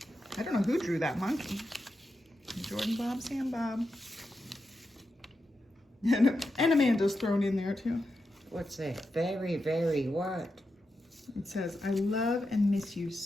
I don't know who drew that monkey. Jordan Bob, Sam Bob. And Amanda's thrown in there too. What's that? Very, very what? It says, I love and miss you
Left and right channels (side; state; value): both; normal; correlation 0.88